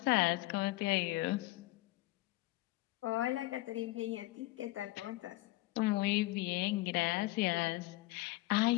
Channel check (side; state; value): right; quieter; 19.1 dB